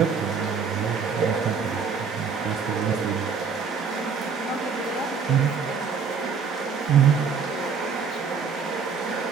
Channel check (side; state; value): left; quieter; 5.8 dB